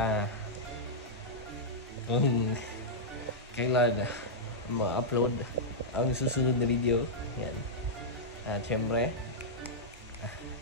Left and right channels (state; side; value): normal; both; correlation -0.09